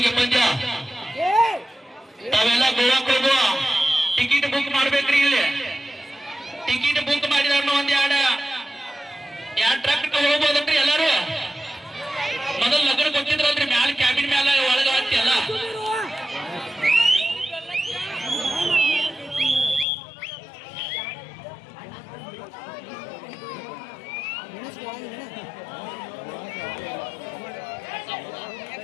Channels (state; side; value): drops out; right; at 19.9 s